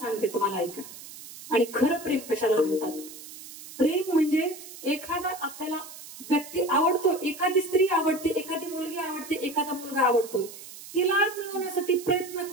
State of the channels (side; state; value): right; noise; hiss, 15 dB below the sound